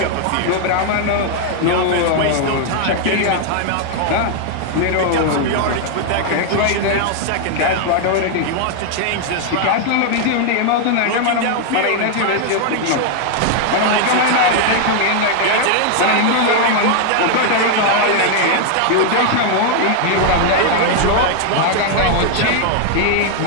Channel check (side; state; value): both; different; correlation 0.00